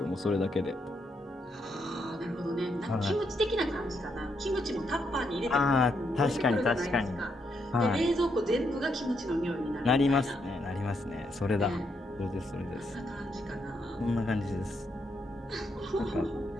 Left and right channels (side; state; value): both; normal; correlation 0.78